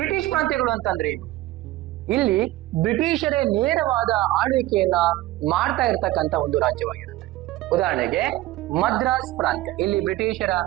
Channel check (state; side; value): quieter; left; 16.8 dB